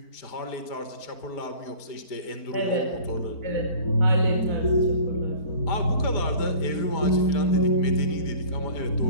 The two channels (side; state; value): right; late; 4.4 ms